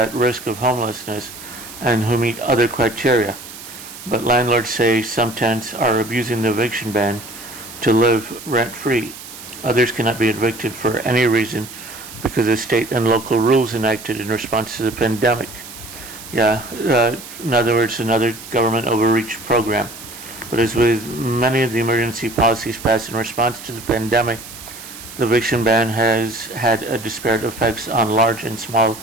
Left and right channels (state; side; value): noise; right; hiss, 14 dB below the sound